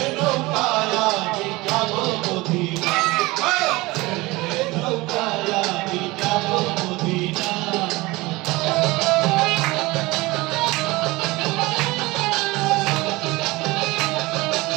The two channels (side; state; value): left; quieter; 21.7 dB